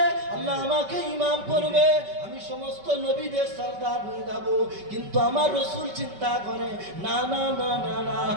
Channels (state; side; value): late; left; 5.2 ms